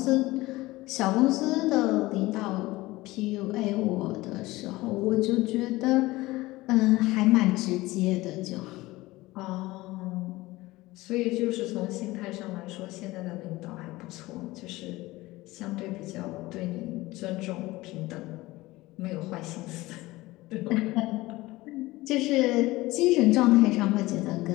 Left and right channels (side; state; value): right; quieter; 19.4 dB